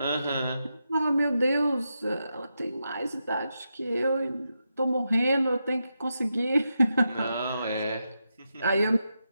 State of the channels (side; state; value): both; inverted; correlation -0.86